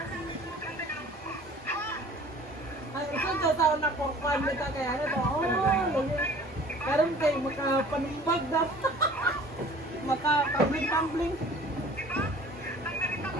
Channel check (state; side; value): normal; both; correlation 0.48